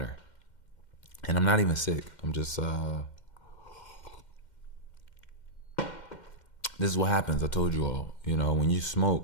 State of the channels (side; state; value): right; late; 2.1 ms